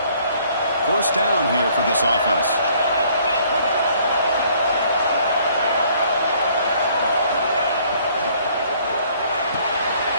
First down here for this offense.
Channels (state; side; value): inverted; both; correlation -0.61